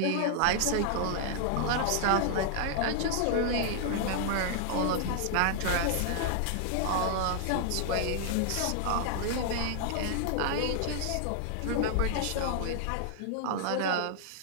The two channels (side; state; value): both; different; correlation 0.00